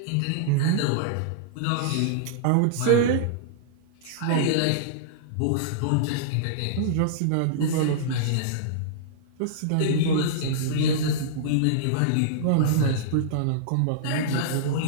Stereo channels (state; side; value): different; both; correlation -0.02